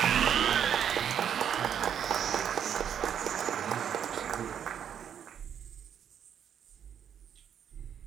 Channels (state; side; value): quieter; left; 8.7 dB